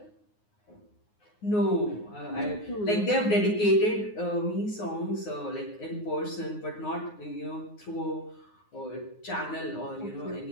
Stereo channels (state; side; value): late; right; 9.6 ms